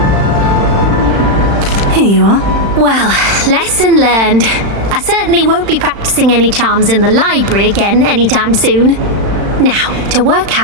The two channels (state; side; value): late; left; 35 ms